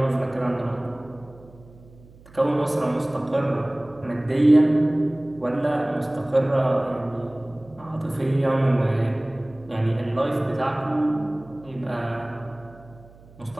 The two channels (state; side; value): noise; right; hum, 24 dB below the sound